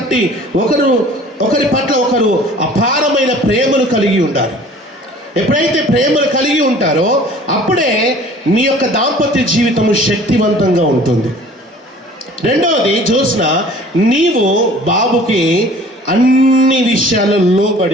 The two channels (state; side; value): normal; both; correlation 0.49